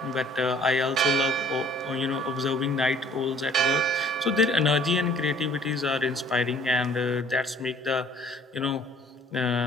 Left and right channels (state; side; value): normal; both; correlation 0.55